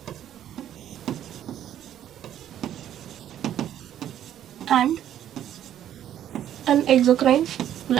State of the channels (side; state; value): left; quieter; 11.0 dB